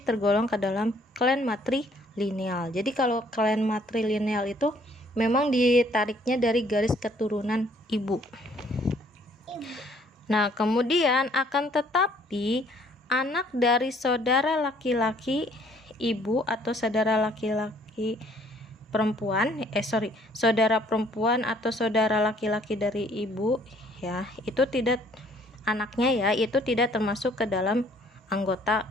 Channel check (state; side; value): normal; both; correlation 0.61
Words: tergolong ke dalam klan matrilineal. Jadi kalau klan matrilineal itu memang ditariknya dari garis keturunan ibu. Nah, kemudian akan tetapi anak dari saudara laki-laki ibu atau saudara laki-laki perempuan, saudara perempuan atau saudara laki-laki dari ibu ya, itu tidak, anaknya ya, itu tidak termasuk ke dalam anggota